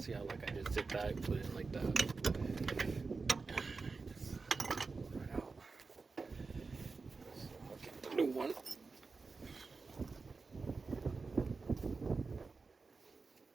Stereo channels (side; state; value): left; quieter; 4.3 dB